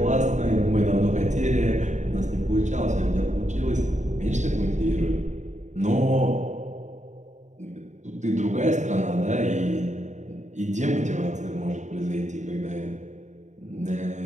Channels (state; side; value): late; left; 0.34 ms